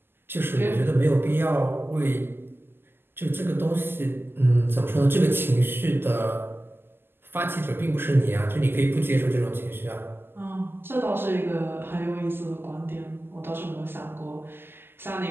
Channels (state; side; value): late; left; 0.10 ms